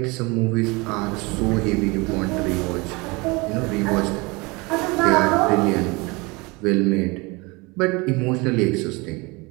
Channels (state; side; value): quieter; left; 25.9 dB